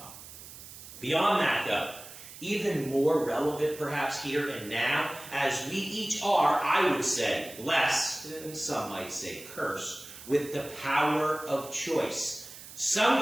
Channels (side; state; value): right; noise; hiss, 15 dB below the sound